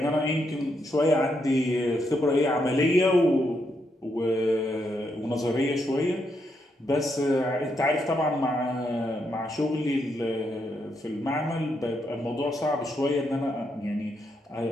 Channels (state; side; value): normal; both; correlation 0.79